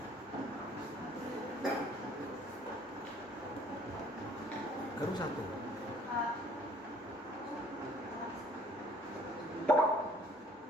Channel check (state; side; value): normal; both; correlation 0.56